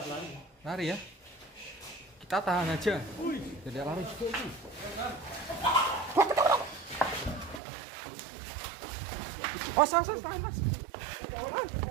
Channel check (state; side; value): drops out; left; at 7.6 s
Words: Lari ya. Kita tahan aja. Tidak lari. Tahan mas.